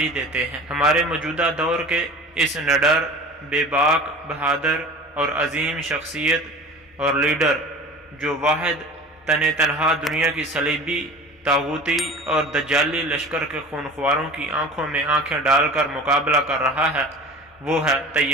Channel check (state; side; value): normal; both; correlation 0.38